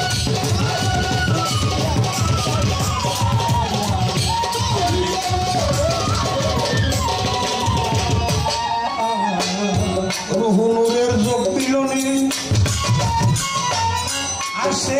রুহুনুরের যোগ মিলনে আসে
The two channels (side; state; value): both; identical; correlation 1.00